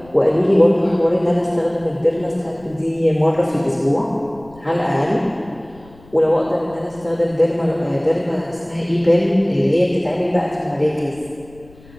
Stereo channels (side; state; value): left; noise; rumble, 25 dB below the sound